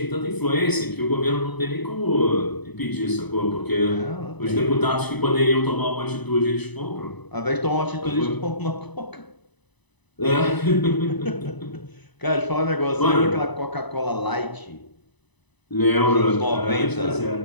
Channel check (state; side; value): late; right; 1.0 ms